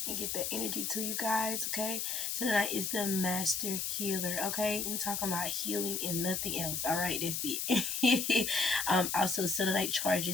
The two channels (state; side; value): noise; left; hiss, 1 dB below the sound